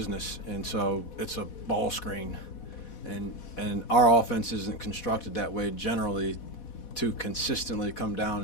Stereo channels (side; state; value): right; late; 4.1 ms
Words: and so it's a ball screen, and our offense isn't constructed that way generally, to consistently come